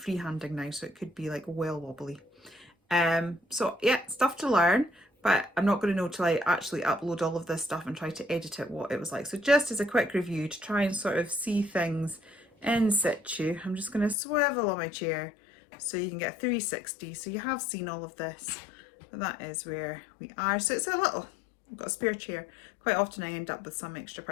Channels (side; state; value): right; drops out; at 14.2 s